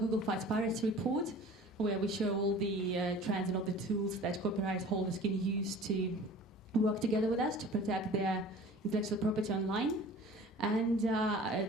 Fights Piracy report, where we show all the trends and all the tools that copyright holders can use to work together with us to protect their intellectual property online. And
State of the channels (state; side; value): normal; both; correlation 0.44